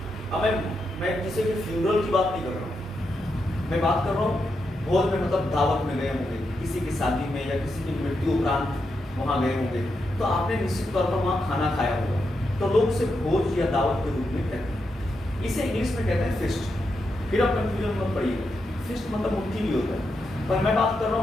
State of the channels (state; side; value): normal; both; correlation 0.84